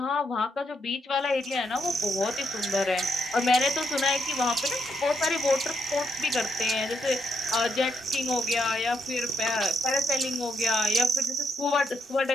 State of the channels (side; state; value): both; normal; correlation 0.76